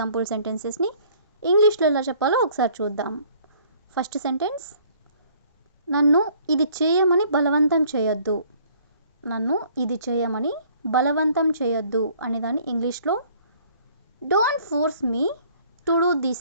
సెంటెన్సెస్ని ఇంగ్లీష్లో ఎలా చెప్పాలో ఒకసారి చూద్దాం. ఫస్ట్ సెంటెన్స్, నన్ను ఇది చేయమని బలవంతం చేయొద్దు. నన్ను ఇది చేయమని బలవంతం చేయొద్దు అనేదాన్ని ఇంగ్లీష్లో don't force me to do this.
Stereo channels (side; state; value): both; inverted; correlation -0.57